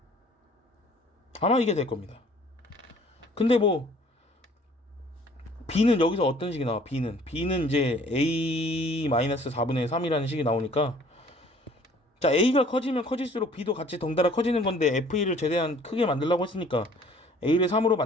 아마 이게 될 겁니다. 근데 뭐 b는 여기서 어떤 식이 나와? b는 이제 a 마이너스 4분의 3이라는 식이 나오니까 자 a가 커지면 커질수록 b도 같이 덩달아 커지는 건데 f1을 최대한 크게 만들려고 했으니까 a를 3으로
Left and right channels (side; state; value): both; normal; correlation 0.54